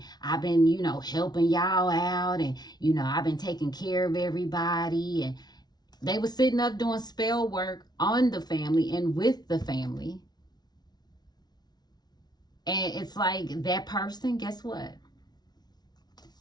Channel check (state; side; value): late; right; 0.19 ms